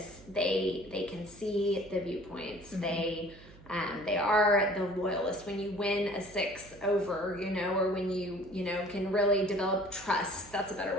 they can see the viewpoints. Mm-hmm. They are the loyalist. When you win a 6 over, or when you can really develop trust. That's a better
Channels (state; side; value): noise; right; hum, 21 dB below the sound